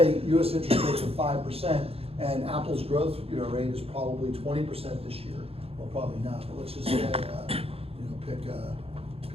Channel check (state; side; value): late; left; 0.28 ms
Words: US interest rates are 5% and Apple's growth rate is probably 20% this year. Well, probably not, but let's just say, pick